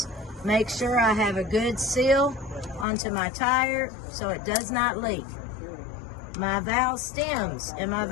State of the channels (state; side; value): drops out; right; at 2.9 s